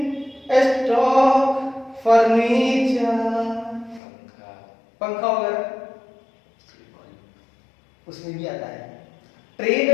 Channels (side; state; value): right; drops out; at 4.0 s